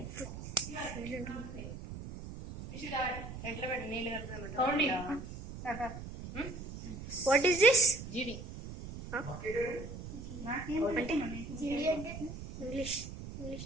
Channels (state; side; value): noise; right; rumble, 10 dB below the sound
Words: ఎట్లా పెట్టి నీళ్ళు కలుపుతాం వాట్ ఈస్ దిస్? జీడి అంటే ఇంగ్లీష్